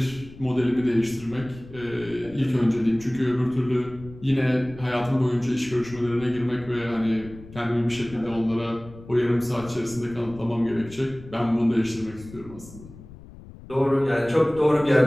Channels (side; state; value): left; noise; rumble, 18 dB below the sound